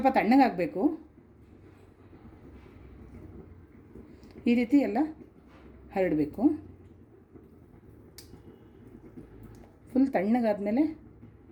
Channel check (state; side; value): identical; both; correlation 1.00